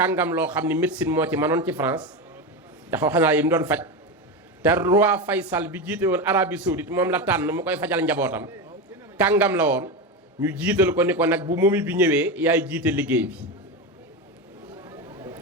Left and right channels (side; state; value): both; normal; correlation 0.17